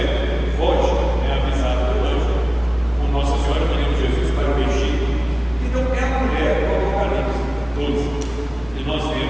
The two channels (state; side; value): noise; right; rumble, 22 dB below the sound